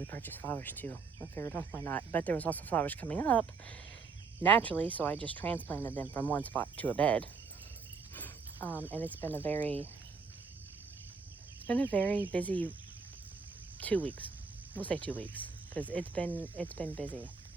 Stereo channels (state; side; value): quieter; left; 5.0 dB